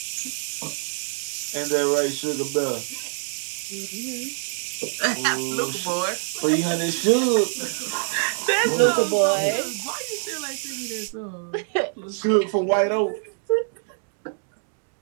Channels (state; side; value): silent; left; 62 dB below the other